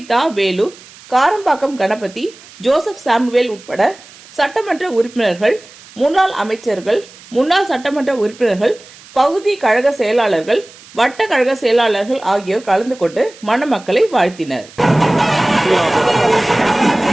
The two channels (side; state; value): right; noise; hiss, 22 dB below the sound